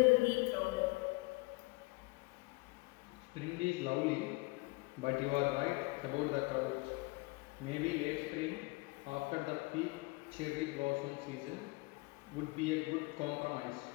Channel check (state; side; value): quieter; right; 25.0 dB